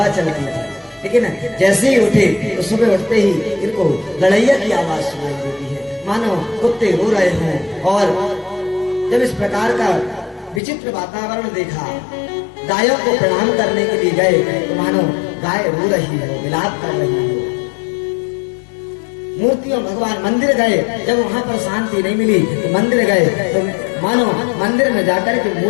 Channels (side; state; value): right; drops out; at 10.6 s